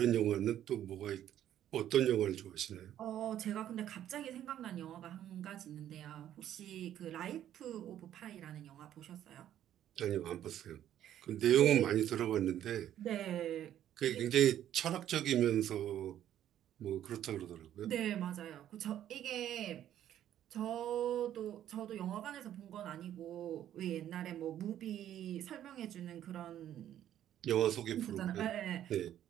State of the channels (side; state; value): left; quieter; 11.3 dB